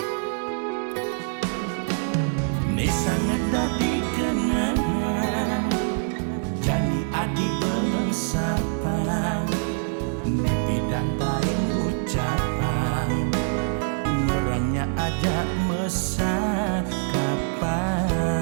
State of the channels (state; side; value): silent; left; 62 dB below the other